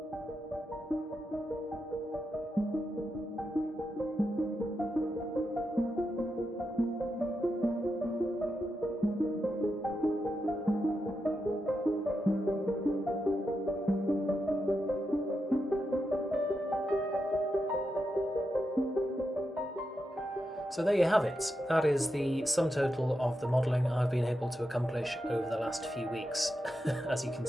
So there you have it. That is the sum total of the modelling I've been able to accomplish over the last few weeks. As you can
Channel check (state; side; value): normal; both; correlation 0.86